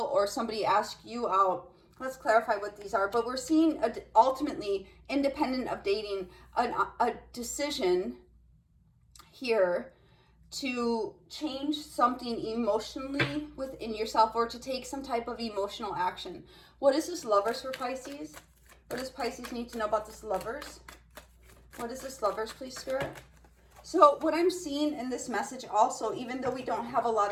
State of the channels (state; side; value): identical; both; correlation 1.00